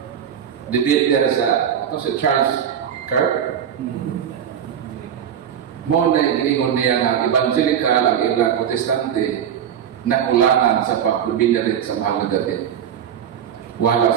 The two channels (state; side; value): quieter; left; 8.9 dB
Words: debater sa si Charles Kirk. Mo na giningon niya ng evangelical ang ilang protestante nakulangan sa pagbibinarit sa mahal na Birhen. Wala